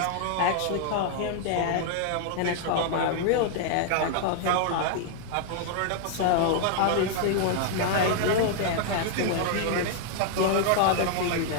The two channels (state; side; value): different; both; correlation 0.00